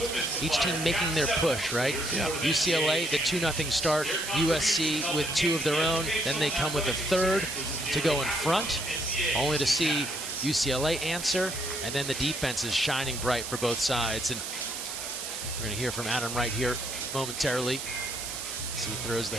each team making their push, right? Yeah. UCLA, the 2-0 start, USC with 2 of their own, then they come with a third to go in front, only to see UCLA answer, and then the defense is shining bright for both sides. And we're going to hear from Adam Wright here momentarily as he throws the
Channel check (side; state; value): right; noise; hiss, 6 dB below the sound